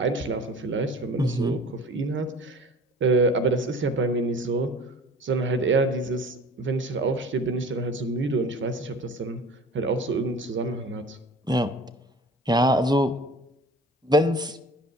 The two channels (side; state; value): both; normal; correlation 0.44